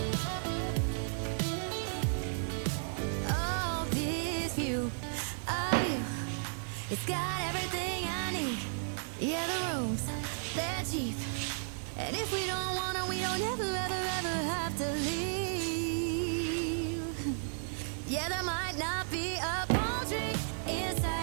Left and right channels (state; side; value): silent; left; 55 dB below the other